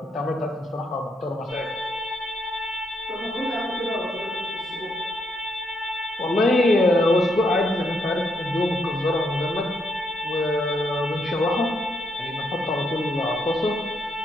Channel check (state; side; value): normal; both; correlation 0.77